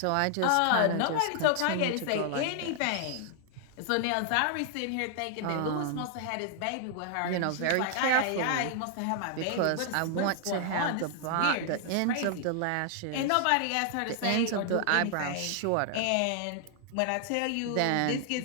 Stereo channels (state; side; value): different; both; correlation 0.00